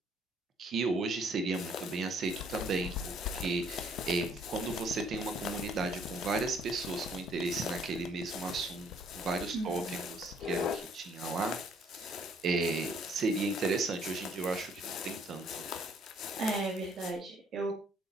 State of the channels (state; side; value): normal; both; correlation 0.63